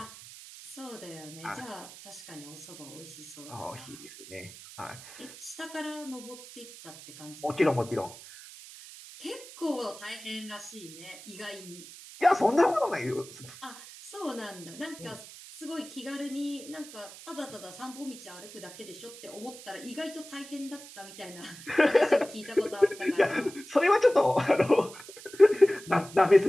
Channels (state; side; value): noise; right; hiss, 16 dB below the sound